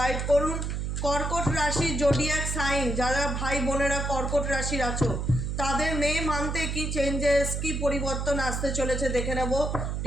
করুন। কর্কট রাশির জোডিয়াক সাইন যারা ভাই বোনেরা কর্কট রাশির আছো, তাদের মে মান্থে কি চেঞ্জেস কি পরিবর্তন আসতে চলেছে দেখে নেব।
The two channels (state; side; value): noise; right; hum, 2 dB below the sound